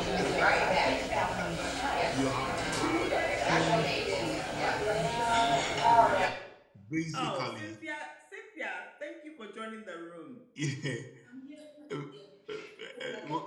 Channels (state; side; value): identical; both; correlation 1.00